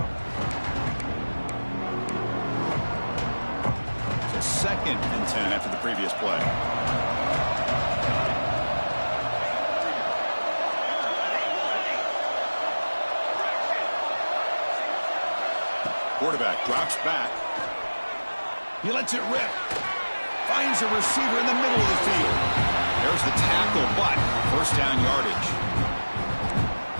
So 2nd and 10 after the previous play. Quarterback drops back. He lets it rip. Finds a receiver in the middle of the field. There's the tackle, but first down yardage.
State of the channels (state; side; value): inverted; both; correlation -1.00